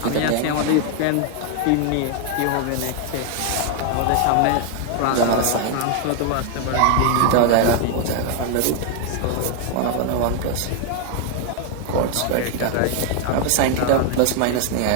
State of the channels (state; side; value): different; both; correlation 0.00